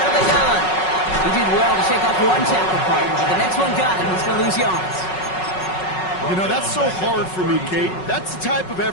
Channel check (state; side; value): late; right; 5.4 ms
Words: of the gun. He did well to shake off one tackle part, but the next one got him. He's going to lose yards. You know, that's so hard for me, Kate. That's the type of